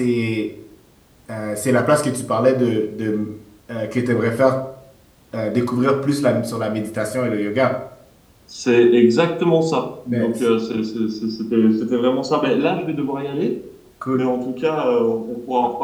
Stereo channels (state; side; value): identical; both; correlation 1.00